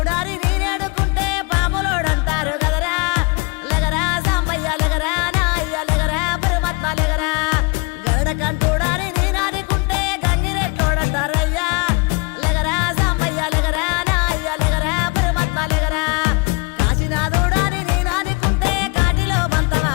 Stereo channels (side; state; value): right; quieter; 30.2 dB